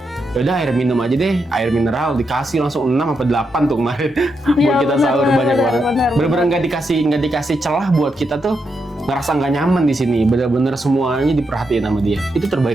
yaudah air minum aja deh, air mineral dikasih langsung 6 apa 8 tuh kemarin buat kita sahur banyak banget. Bener-bener nggak dikasih celah buat kita tuh ngerasa nggak nyaman di sini, bener-bener semuanya diperhatiin sama dia. Itu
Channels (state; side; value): normal; both; correlation 0.83